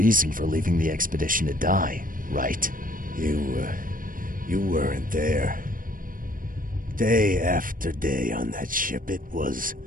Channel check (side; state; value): left; late; 0.40 ms